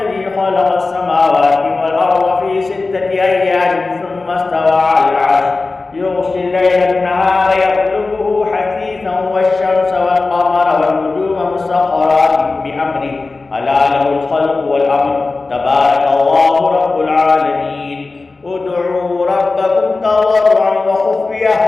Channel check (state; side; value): quieter; right; 3.6 dB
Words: خلق السماوات والأرض في 6 أيام ثم استوى على العرش يغشي الليل النهار يطلبه حثيثا والشمس والقمر والنجوم مسخرات بأمره ألا له الخلق والأمر تبارك الله رب العالمين ادعوا ربكم تضرعا